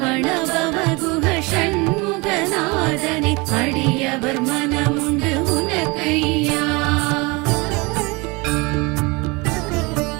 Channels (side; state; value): left; quieter; 26.5 dB